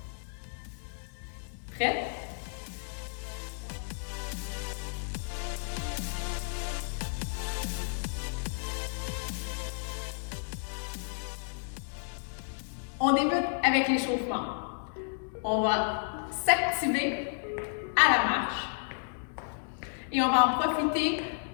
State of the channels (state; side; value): silent; right; digital silence